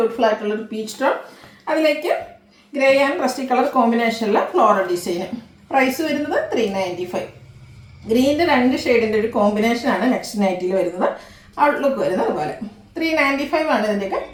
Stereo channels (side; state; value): both; identical; correlation 1.00